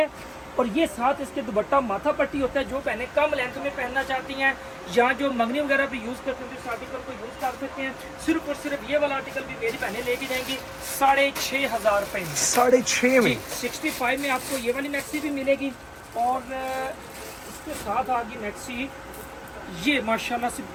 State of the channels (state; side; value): identical; both; correlation 1.00